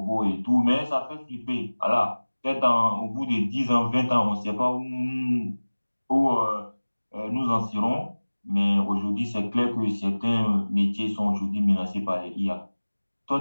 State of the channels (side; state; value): both; inverted; correlation -1.00